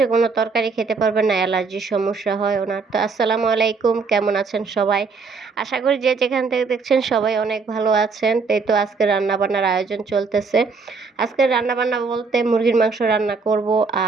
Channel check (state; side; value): quieter; left; 4.6 dB